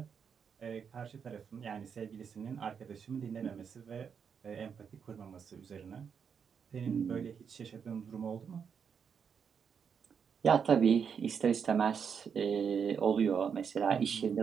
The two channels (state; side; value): quieter; left; 6.8 dB